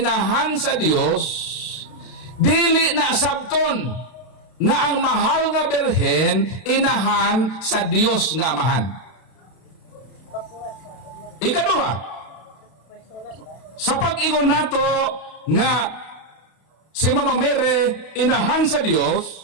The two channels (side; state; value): right; late; 32 ms